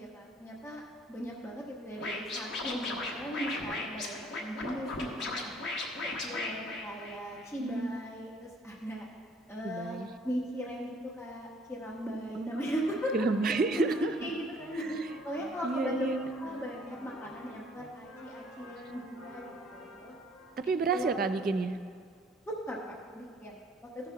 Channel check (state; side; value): normal; both; correlation 0.59